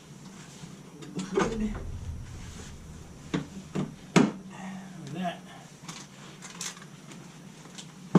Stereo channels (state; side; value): identical; both; correlation 1.00